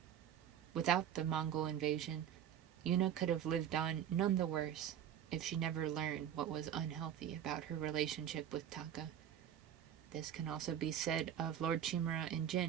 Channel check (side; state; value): left; quieter; 9.9 dB